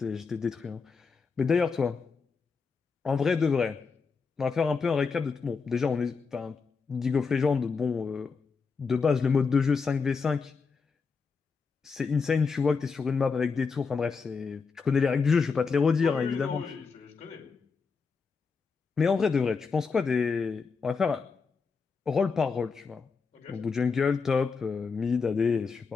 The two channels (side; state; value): right; quieter; 5.1 dB